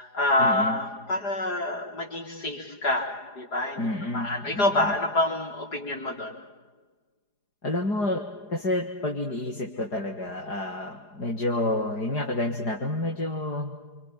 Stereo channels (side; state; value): right; late; 4.9 ms